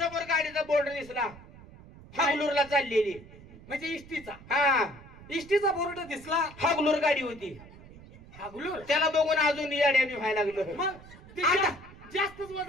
गाडीचा बोर्ड दिसला. हागलूरला चाललेली. म्हणजे इष्टीचा. हा इष्टीचा बोर्ड दिसला. हागलूर गाडी होती. हागलूर. त्याला बघून अजून येड्याने व्हायला लागलं. मग ते आता जास्तच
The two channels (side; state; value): right; noise; rumble, 19 dB below the sound